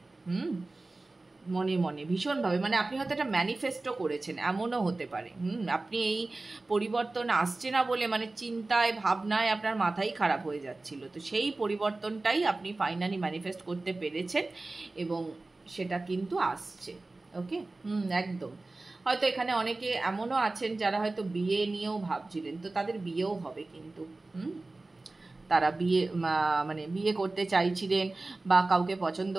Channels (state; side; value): quieter; left; 3.2 dB